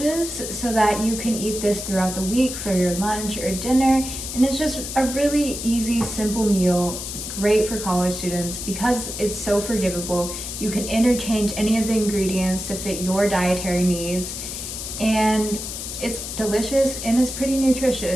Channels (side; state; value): left; noise; hiss, 7 dB below the sound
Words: so that you can eat this throughout the week for your lunch or dinner. And it's just a really easy, simple meal, great for college students because it's so forgivable. You can interchange any of the ingredients to fit your dietary needs. And it's delicious and it's pretty